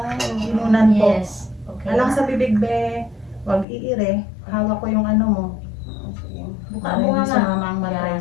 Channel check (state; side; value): drops out; right; at 3.7 s